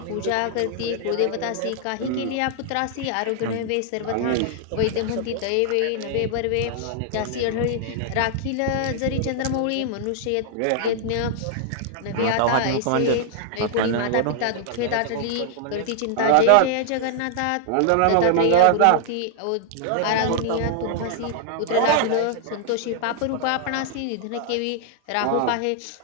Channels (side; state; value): both; different; correlation -0.01